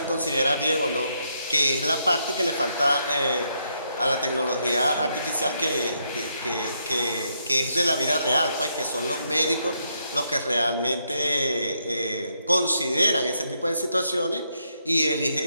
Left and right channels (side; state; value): both; inverted; correlation -0.78